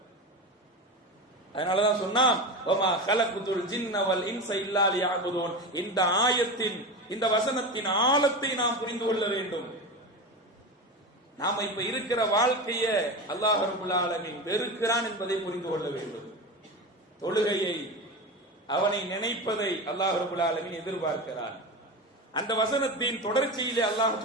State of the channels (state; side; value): normal; both; correlation 0.23